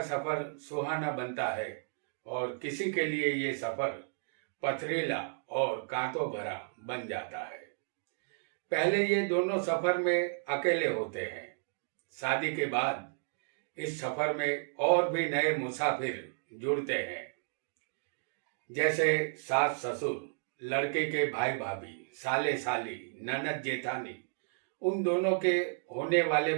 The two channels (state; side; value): silent; left; digital silence